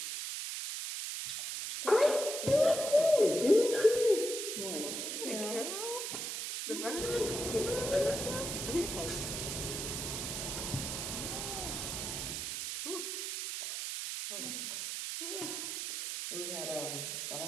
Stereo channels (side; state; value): right; noise; hiss, 4 dB below the sound